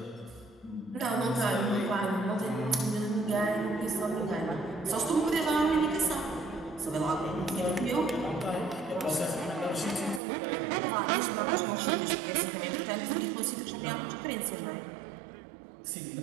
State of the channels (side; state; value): left; drops out; at 10.2 s